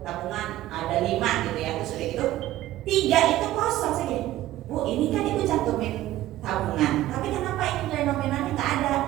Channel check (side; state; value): left; quieter; 14.8 dB